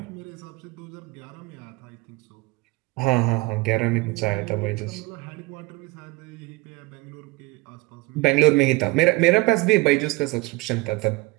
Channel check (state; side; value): quieter; left; 23.0 dB